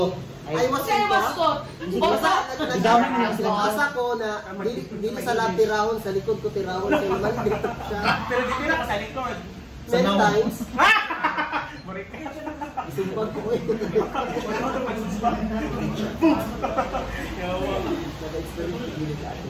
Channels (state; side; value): identical; both; correlation 1.00